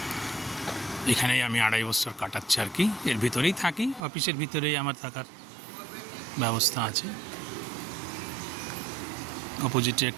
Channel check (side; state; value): left; drops out; at 4.0 s